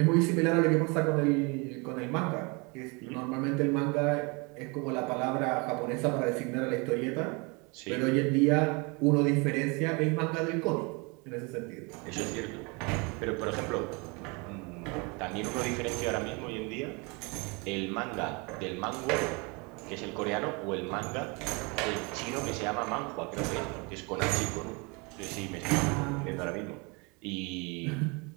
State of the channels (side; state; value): left; quieter; 29.5 dB